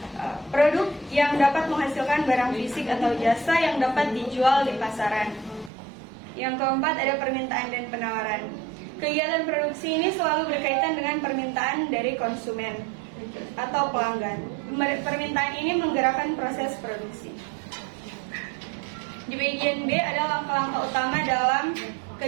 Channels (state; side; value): drops out; left; at 5.7 s